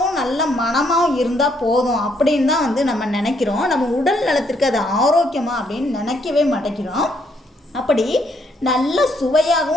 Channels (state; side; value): normal; both; correlation 0.71